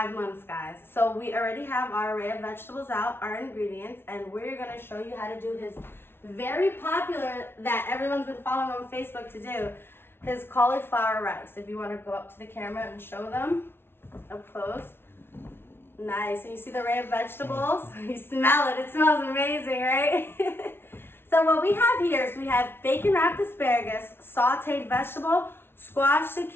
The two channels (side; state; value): right; late; 0.11 ms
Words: months, guys. So we already have our array of vegetables out, our ingredients, and we're going to show you how to do his very popular, that everyone's been following on Facebook to do, his cauliflower rice. If you want to go up to the camera and show them up close. Nice. And you see the array of vegetables? You smell it. It smells amazing, right? So what we have here is we have bacon wrapped asparagus, sauteed vegetable, squash,